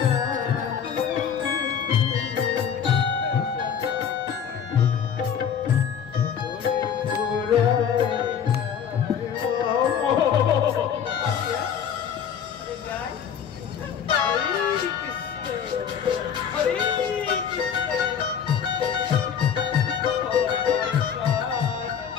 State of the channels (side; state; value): right; quieter; 7.9 dB